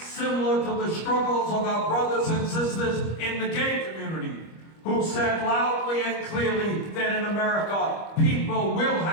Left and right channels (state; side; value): late; right; 25 ms